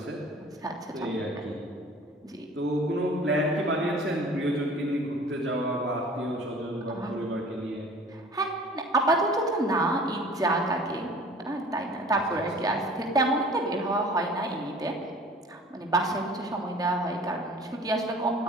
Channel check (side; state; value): both; normal; correlation 0.47